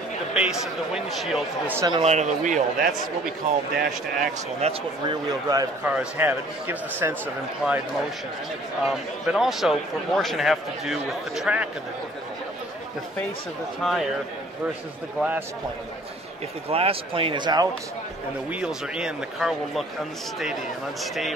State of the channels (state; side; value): normal; both; correlation 0.54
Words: The base of the windshield to the center line of the wheel, that's what we call dash to axle, and that's what rear-wheel drive cars have. It gives the sense of implied motion. But also, proportion have to do with the track of the vehicle. The face of the tire versus the glass plane. If the glass plane is out and the wheels are in, the car will look unsteady and